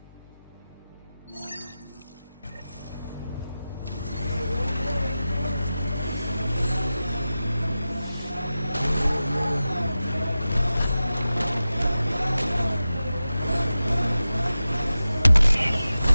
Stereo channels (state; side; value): inverted; both; correlation -0.94